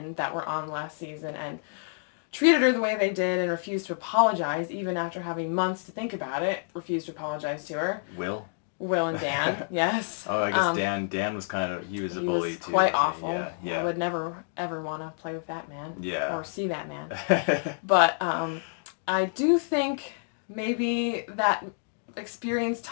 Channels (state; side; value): silent; right; digital silence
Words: that were on last season and treated her the way they did and refused to apologize even after having months to think about it. Refused to apologize to her. Will and Dan, yes. Oh, I guess Dan was he was a bully too. Quite awful. Yeah. I would never ever want to play with that man. Yeah. Or see that man. But I do think maybe that experience